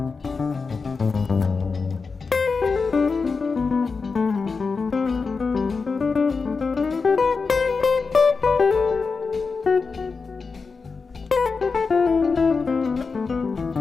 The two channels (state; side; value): quieter; right; 4.7 dB